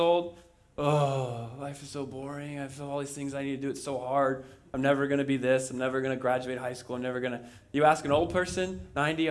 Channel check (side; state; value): both; identical; correlation 1.00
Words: oh, life is so boring. I have all these things I need to do. It's so hard. I'm never going to be this. I'm never going to graduate high school. I'm never going to. You ask an old person, 90,